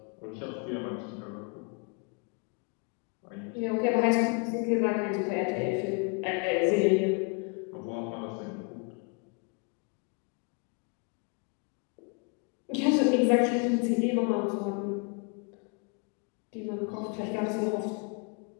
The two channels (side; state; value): right; quieter; 35.0 dB